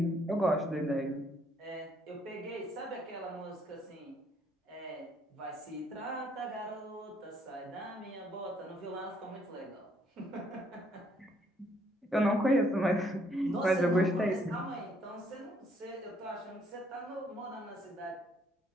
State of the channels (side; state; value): both; normal; correlation 0.68